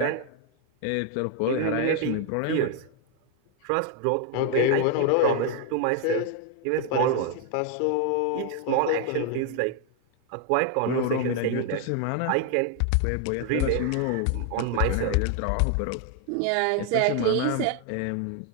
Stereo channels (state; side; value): different; both; correlation 0.00